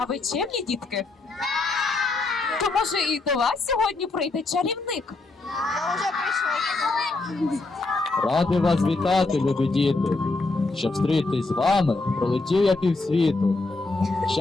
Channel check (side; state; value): right; quieter; 3.4 dB